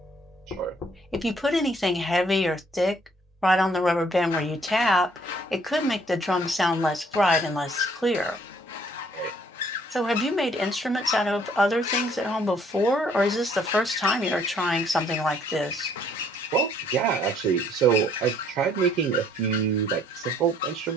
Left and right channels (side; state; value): both; normal; correlation 0.63